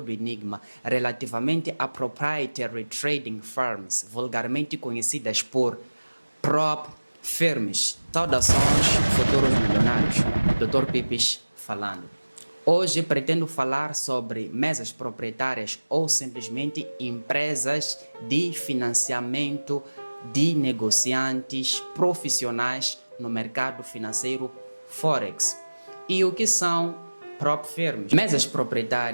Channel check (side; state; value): both; inverted; correlation -1.00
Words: o enigma relativamente a proprietary trading firms, vulgarmente conhecidas por prop firms. Saudações, futuros milionários. Dr. Pipis falando. Hoje pretendo falar sobre mesas proprietárias ou simplesmente empresas de financiamento de negociantes profissionais no mercado financeiro Forex. E o que são prop firms? Mesas